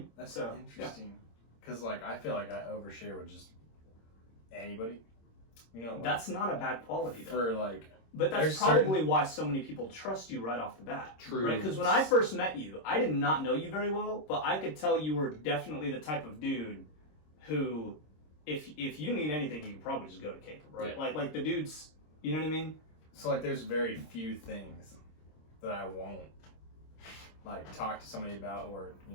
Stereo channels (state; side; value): late; right; 26 ms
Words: That's so interesting. Because, like, I feel like I overshare with just anybody. Like, that's not a bad quality, though. For, like... But that's probably why so many people trust you right off the bat. True. Right? Because when I first met you, I did not know you very well, but I could tell you were definitely the type of dude who, if you need anything, you can probably just go to Caleb, right? Yeah. Like the dudes, you know what I mean? So, like, there's very few things that I won't, like, talk to somebody about, or,